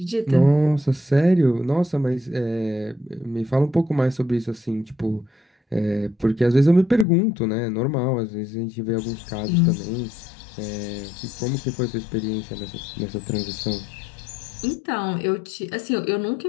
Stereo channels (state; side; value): drops out; right; at 7.1 s